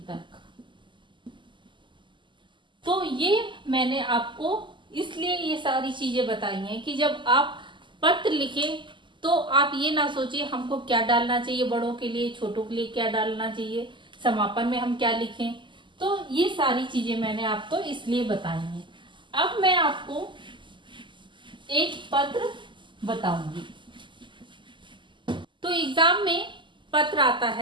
तो ये मैंने आपको इसलिए ये सारी चीजें बताई हैं कि जब आप पत्र लिखें तो आप ये ना सोचिए हमको क्या डालना चाहिए, बड़ों के लिए, छोटों के लिए क्या डालना चाहिए, समापन में हम क्या लिखें। तो ये सारी चीजें मैंने आपको इसलिए बताई हैं। अब मैं आपको एक पत्र बताऊंगी। तो एग्जाम में पत्र आता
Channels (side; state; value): left; late; 0.24 ms